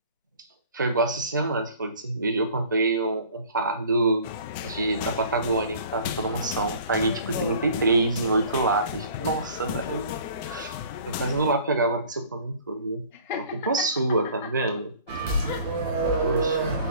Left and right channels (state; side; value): inverted; both; correlation -0.49